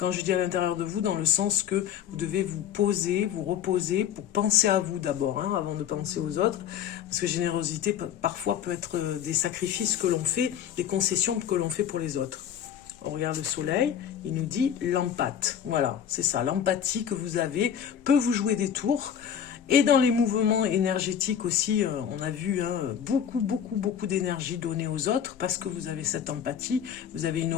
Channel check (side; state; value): right; quieter; 9.0 dB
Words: je dis à l'intérieur de vous, dans le sens que vous devez vous poser, vous reposer pour penser à vous d'abord, hein, avant de penser aux autres. Parce que générosité, parfois, peut être des sacrifices que l'on fait, des concessions que l'on fait pour les autres. On regarde le soleil, il nous dit l'empathie. Voilà, c'est ça, l'empathie que vous avez peut vous jouer des tours. Et dans les mouvements énergétiques aussi, on a vu hein, beaucoup d'énergie donnée aux autres parce que vous avez cette empathie, vous avez une